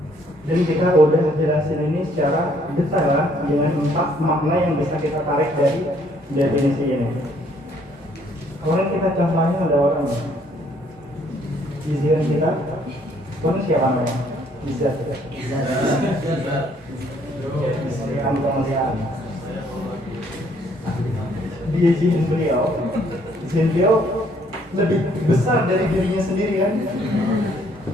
dan kita udah jelasin ini secara detail lah, dengan 4 makna yang bisa kita tarik dari definisi ini. Kemarin kita contohnya ada orang izin kita, pun siapa namanya? Bisa. Kemuliaan. Dia izin beliau lebih besar dari dirinya sendiri kan?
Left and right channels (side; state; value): both; normal; correlation 0.65